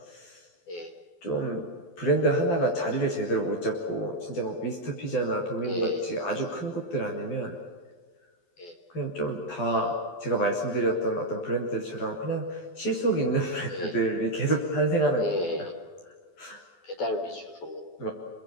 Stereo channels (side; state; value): right; late; 12 ms